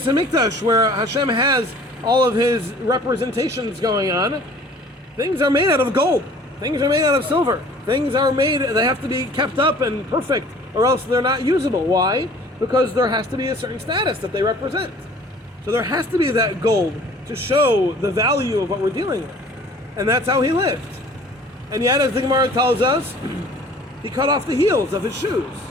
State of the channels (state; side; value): normal; both; correlation 0.50